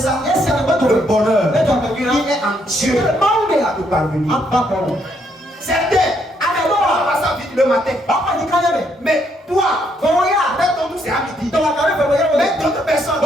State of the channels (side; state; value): both; normal; correlation 0.73